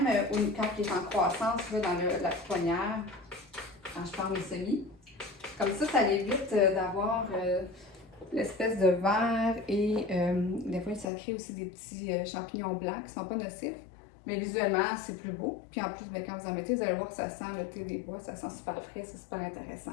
quand il est en croissance là, dans la pouponnière, quand je pars mes semis. Comme ça évite d'avoir l'espèce de verre et des fois, ça crée aussi des petits champignons blancs qui ne sont pas nocifs. Mais visuellement, c'est plus beau. Puis en plus, bien, quand vous en mettez, vous allez voir que ça sent le thé des bois, ça sent super frais, c'est super intéressant.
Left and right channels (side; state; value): right; drops out; at 11.1 s